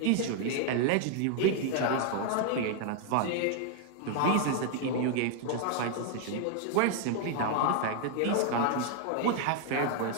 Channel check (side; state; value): both; different; correlation 0.00